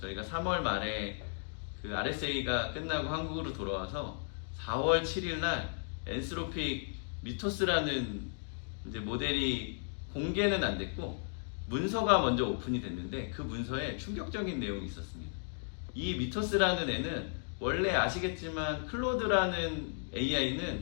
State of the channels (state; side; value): silent; right; digital silence